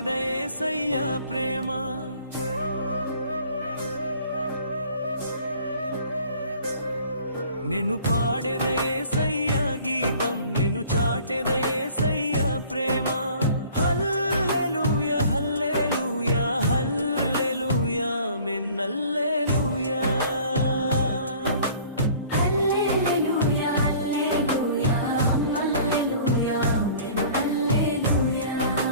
యేసయ్య ప్రేమ. నేను పాడేద యేసయ్య గీతం, నేను చాటెద యేసయ్య ప్రేమ. హల్లెలూయా హల్లెలూయా హల్లెలూయా ఆమేన్ హల్లెలూయా.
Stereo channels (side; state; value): both; inverted; correlation -0.51